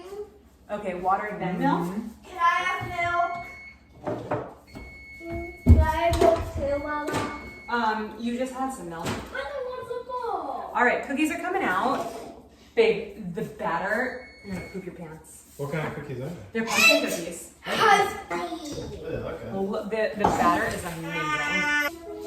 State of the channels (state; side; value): identical; both; correlation 1.00